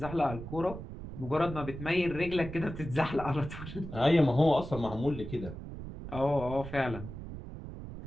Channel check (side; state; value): right; noise; rumble, 10 dB below the sound